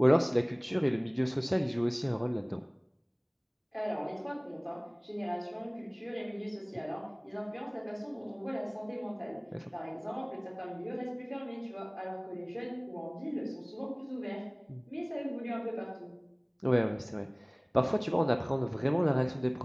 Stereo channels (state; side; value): identical; both; correlation 1.00